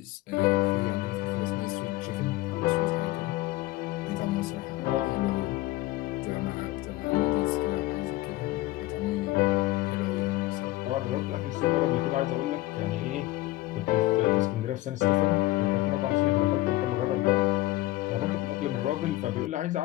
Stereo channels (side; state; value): right; quieter; 18.1 dB